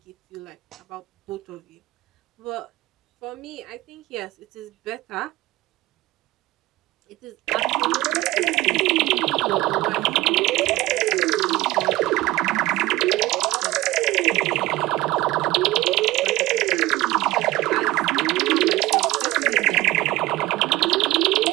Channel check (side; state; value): left; quieter; 17.7 dB